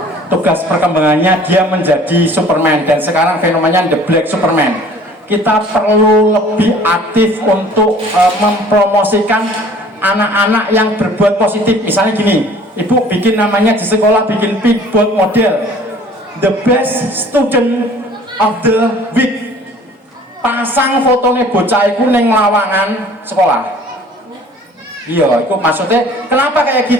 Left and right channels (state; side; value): normal; both; correlation 0.50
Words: Tugas perkembangannya dia menjadi Superman, dan sekarang fenomenanya the Black Superman. kita perlu lebih aktif untuk mempromosikan anak-anak yang berbuat positif. Misalnya gini, ibu bikin namanya di sekolah, bikin big board model, the best student of the week, pasang fotonya bocah itu neng lawangan sekolah. Iya, itu maksudnya kenapa kayak